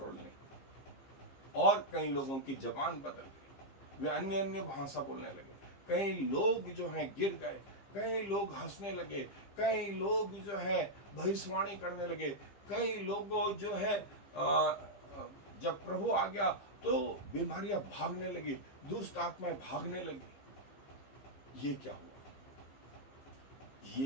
नहीं। और कई लोगों की जबान बदल गई, वे अन्य अन्य भाषा बोलने लगे। कई लोग जो हैं गिर गए, कई लोग हंसने लगे, कई लोग जो है भविष्यवाणी करने लगे, कई लोगों जो है जब प्रभु आ गया तो बीमारियां भागने लगी, दुष्ट आत्माएं भागने लगी। ये क्या हुआ?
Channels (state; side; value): late; right; 15 ms